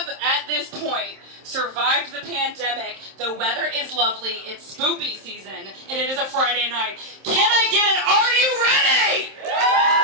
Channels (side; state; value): left; late; 26 ms